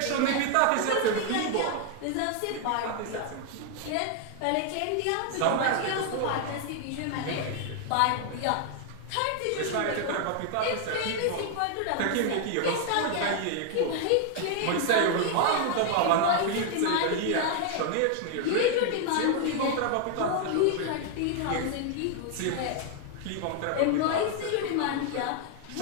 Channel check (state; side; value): different; both; correlation 0.00